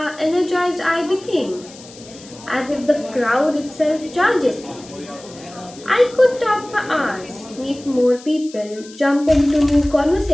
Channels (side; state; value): left; noise; hiss, 20 dB below the sound